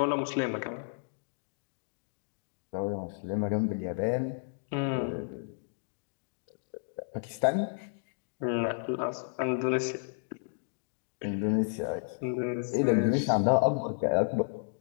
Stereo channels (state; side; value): silent; right; digital silence